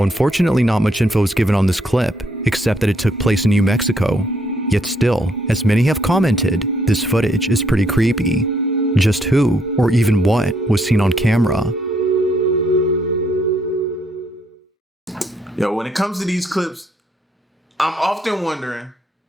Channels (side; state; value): both; normal; correlation 0.71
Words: unfortunately not much info is given on this clip, except that it took place in New Mexico. Yet still, as many have commented, this footage is pretty creepy. Just who, or even what, was seen on camera? Yo, when it comes to these clips, I'm often wondering,